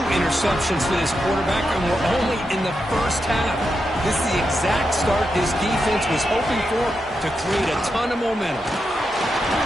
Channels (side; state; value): both; normal; correlation 0.86